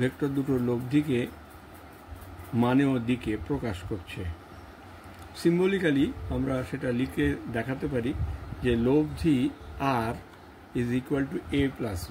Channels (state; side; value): identical; both; correlation 1.00